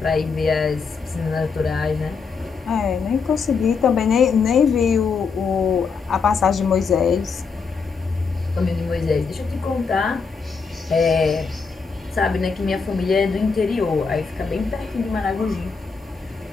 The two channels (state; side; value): quieter; right; 5.2 dB